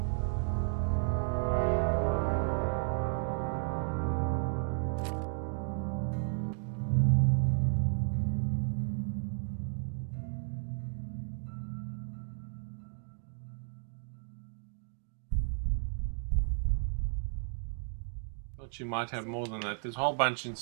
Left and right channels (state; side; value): silent; left; 55 dB below the other